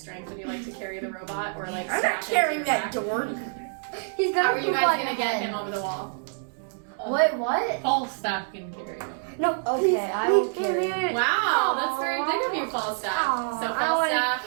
strength. Would you like to carry the robot or like I'm strap not into your carrying that back? door. He's gonna How are you poop guys on gonna your get head. him over the wall? Wait, what? Falstaff can carry him. No, Okay, I will carry. Wow, that's very big of you, Falstaff. So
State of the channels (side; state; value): left; silent; 61 dB below the other